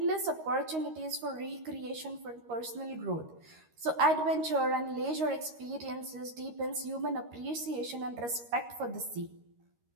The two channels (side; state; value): left; late; 13 ms